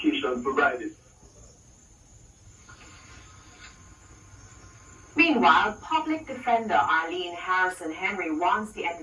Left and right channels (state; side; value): identical; both; correlation 1.00